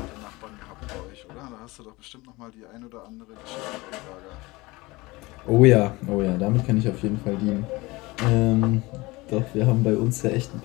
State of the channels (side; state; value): right; quieter; 22.1 dB